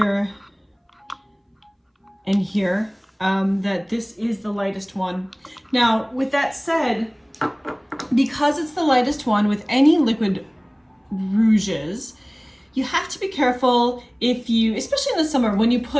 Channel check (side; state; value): both; identical; correlation 1.00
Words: and here that this is the lightest one. Now, with that said, because it's the lightest one with any liquid rouges, you have to be careful if you, especially in the summer, when you